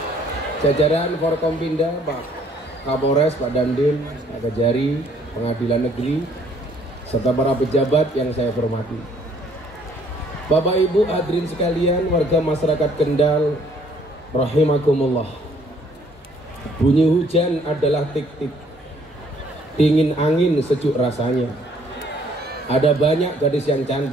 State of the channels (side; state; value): both; normal; correlation 0.63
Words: Jajaran Forkompinda, Pak Kapolres, Pak Dandim, Pak Kejari, Pengadilan Negeri, serta para pejabat yang saya hormati. Bapak Ibu hadirin sekalian, warga masyarakat Kendal, rahimakumullah. Bunyi hujan adalah tik-tik, dingin angin sejuk rasanya. Ada banyak gadis yang